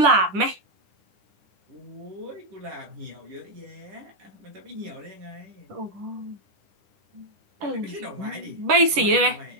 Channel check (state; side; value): late; left; 10 ms